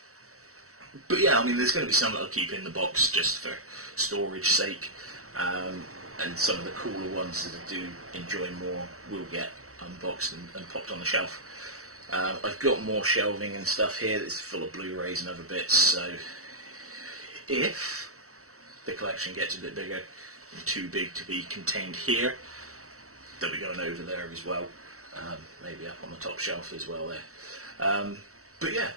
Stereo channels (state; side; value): late; left; 0.64 ms